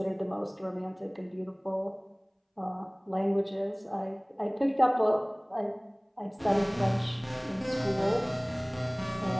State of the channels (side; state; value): both; identical; correlation 1.00